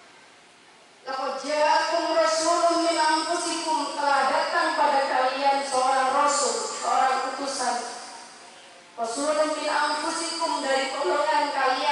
laqad ja'akum rasulun min anfusikum, telah datang pada kalian seorang rasul, seorang utusan. Rasulun min anfusikum, dari golongan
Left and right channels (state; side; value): identical; both; correlation 1.00